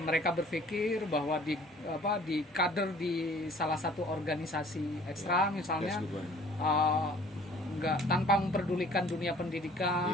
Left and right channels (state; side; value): normal; both; correlation 0.53